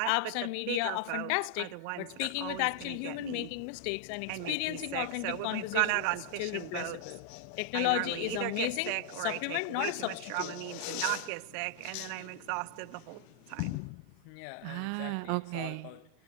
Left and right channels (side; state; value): both; different; correlation 0.00